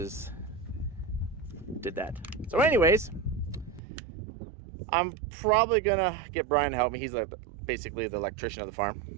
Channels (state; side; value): drops out; left; at 3.8 s